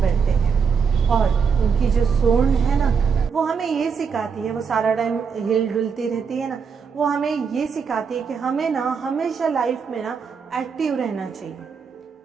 हैं। और उनकी जो सूंड है ना, वो हमें ये सिखाती है, वो सारा टाइम हिल डुलती रहती है ना, वो हमें ये सिखाती है कि हमें ना हमेशा लाइफ में ना एक्टिव रहना चाहिए,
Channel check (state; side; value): quieter; left; 6.1 dB